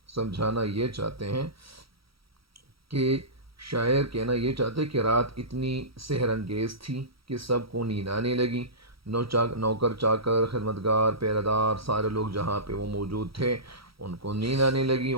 سمجھانا یہ چاہتے ہیں کہ شاعر کہنا یہ چاہتے کہ رات اتنی سحر انگیز تھی کہ سب کو نیند آنے لگی، نوکر چاکر خدمتگار پہرہ دار سارے لوگ جہاں پہ وہ موجود تھے ان کو نیند آنے لگی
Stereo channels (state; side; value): late; left; 0.75 ms